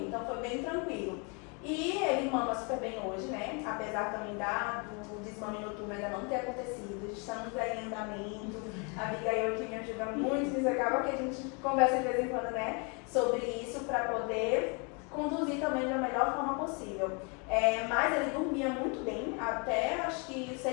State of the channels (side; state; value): right; quieter; 33.9 dB